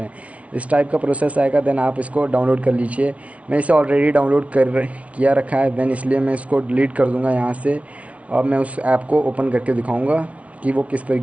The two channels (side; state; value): left; late; 0.065 ms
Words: हैं। इस टाइप का प्रोसेस आएगा, देन आप इसको डाउनलोड कर लीजिए। मैं इसे ऑलरेडी डाउनलोड किया रखा है, देन इसलिए मैं इसको डिलीट कर दूँगा यहाँ से, और मैं उस ऐप को ओपन करके दिखाऊँगा कि वो किस